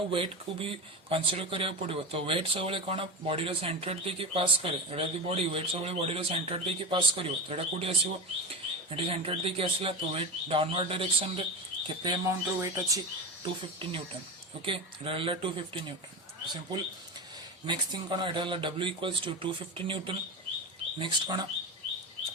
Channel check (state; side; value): normal; both; correlation 0.21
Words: वेट को भी कंसीडर करिया पड़ो। तो वेट सब कौन बॉडी रो सेंटर देकी पास करे एटा बॉडी वेट सब बॉडी रो सेंटर देकी पास करिवो तो एटा कोठी आसीबो एटी सेंटर देकी आसला तो वेट डाउनवर्ड डायरेक्शन रे केते अमाउंट रो वेट अछि 250 न्यूटन। ओके, एटा 250 न्यूटन सिंपल। नेक्स्ट थिंग कौन एटा W equals to 250 newton. Next कौन